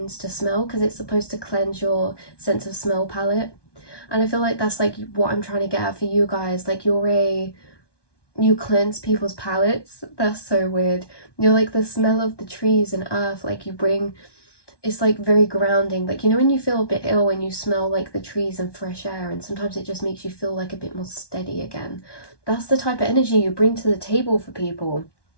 to smell because it's supposed to cleanse your sense of smell palette. And I feel like that's like what I'm trying to get at for you guys. Like you cleanse people's palates. That's so weird. You're like the smell of the trees and earth, like you bring, it's like very grounding. Like, you know, when you feel a bit ill and you smell like the trees and fresh air, and sometimes it just makes you feel like a bit more steady again. That's the type of energy you bring to the table for people.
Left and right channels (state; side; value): late; right; 1.2 ms